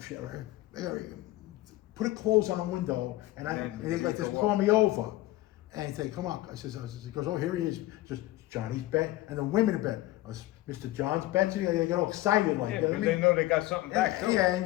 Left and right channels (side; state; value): right; quieter; 17.2 dB